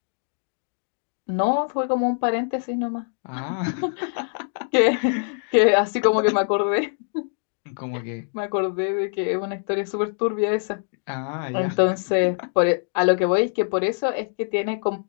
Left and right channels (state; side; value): silent; right; digital silence